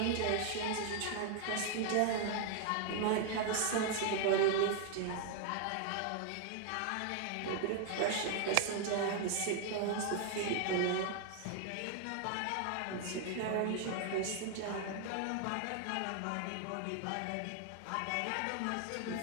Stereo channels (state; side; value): different; both; correlation 0.00